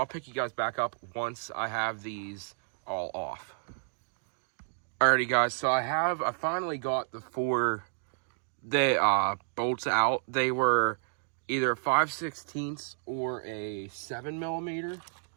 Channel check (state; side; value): silent; left; digital silence